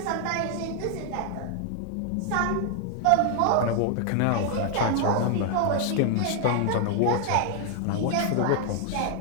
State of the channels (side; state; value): both; different; correlation 0.00